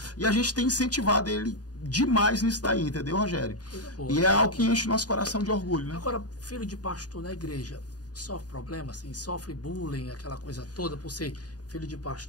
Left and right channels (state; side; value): late; right; 0.68 ms